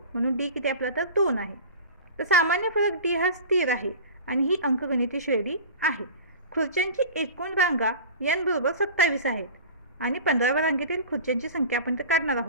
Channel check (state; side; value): inverted; both; correlation -0.36